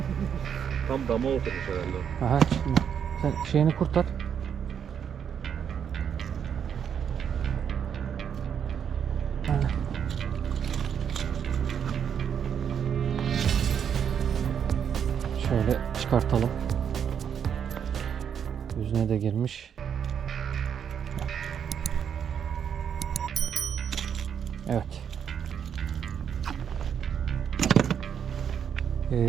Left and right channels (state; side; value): quieter; left; 8.0 dB